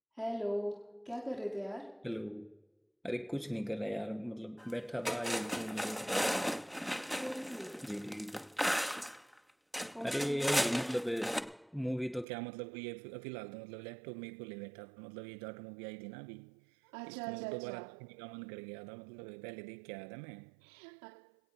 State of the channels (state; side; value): drops out; left; at 12.2 s